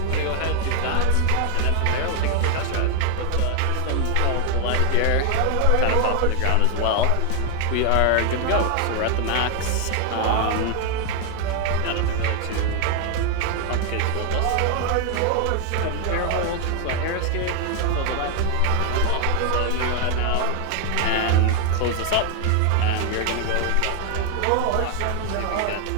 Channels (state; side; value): different; both; correlation 0.01